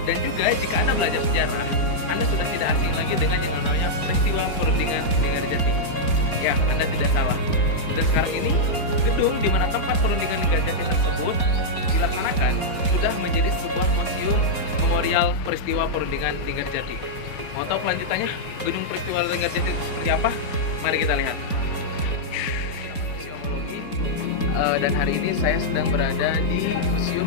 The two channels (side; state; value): right; late; 4.3 ms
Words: Dan juga jika Anda belajar sejarah, Anda sudah tidak asing lagi dengan yang namanya peristiwa perundingan Linggarjati. Ya, Anda tidak salah. Dan sekarang ini, gedung di mana tempat perundingan Linggarjati tersebut dilaksanakan sudah menjadi sebuah museum memorial peristiwa perundingan Linggarjati. Mau tahu kelanjutannya gedung peristiwa Linggarjati itu seperti apa? Mari kita lihat. Museumologi, dan hari ini saya sedang berada di